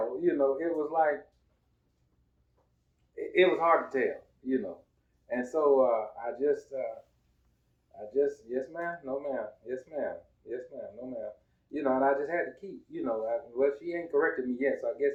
you know, it was hard to tell, you know. And so I just, yes ma'am, no ma'am, yes ma'am, no ma'am. You know, and I just had to keep, you know, well, she ain't corrected me yet, so I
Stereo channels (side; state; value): both; identical; correlation 1.00